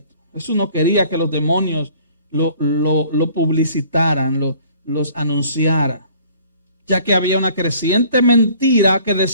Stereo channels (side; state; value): both; inverted; correlation -0.54